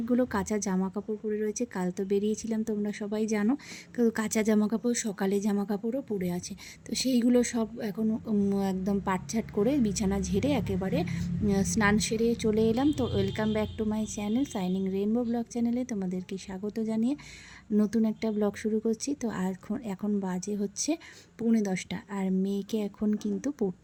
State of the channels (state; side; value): identical; both; correlation 1.00